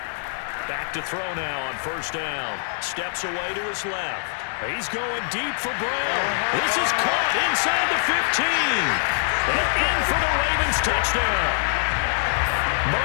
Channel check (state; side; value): silent; right; digital silence